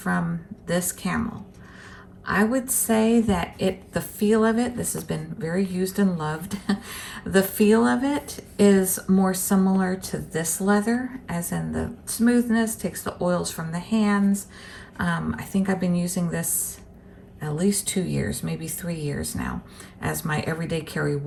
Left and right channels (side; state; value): both; identical; correlation 1.00